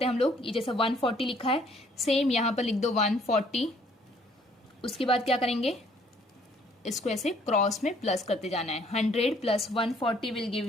हैं हम लोग? ये जैसा 140 लिखा है सेम यहाँ पर लिख दो 140. उसके बाद क्या करेंगे? इसको ऐसे क्रॉस में प्लस करते जाना है. 100 plus 140 will give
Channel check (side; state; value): both; normal; correlation 0.62